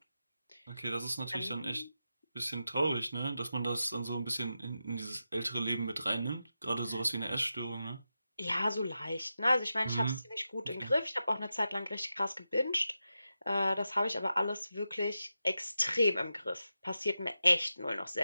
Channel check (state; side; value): inverted; both; correlation -0.90